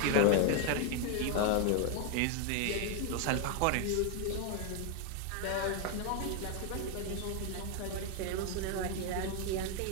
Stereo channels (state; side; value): different; both; correlation 0.01